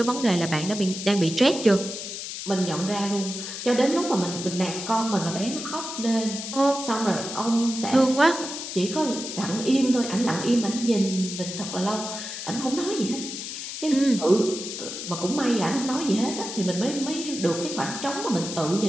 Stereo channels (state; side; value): noise; left; hiss, 7 dB below the sound